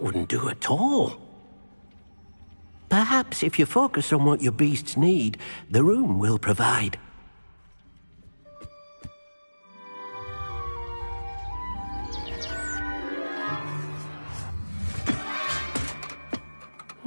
wouldn't do at all. Perhaps if you focus on what your beasts need, the room will provide.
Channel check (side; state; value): both; inverted; correlation -1.00